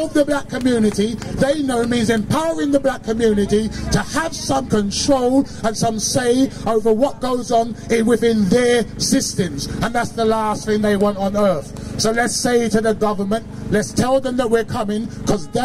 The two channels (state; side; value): identical; both; correlation 1.00